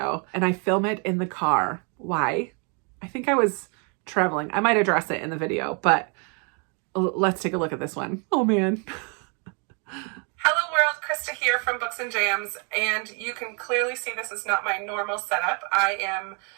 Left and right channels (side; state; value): left; quieter; 36.1 dB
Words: And I film it in the car. Why? I think I was traveling. I might address it in the video, but let's take a look at this one. Oh man. Hello world, Krista here from Books and Jams, and you can clearly see this is not my normal setup. I am